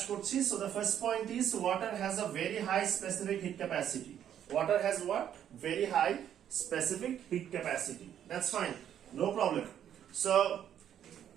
করছি। So the first point is water has a very high specific heat capacity. Water has what? Very high specific heat capacity. That's fine, no problem. So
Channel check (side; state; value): left; quieter; 9.9 dB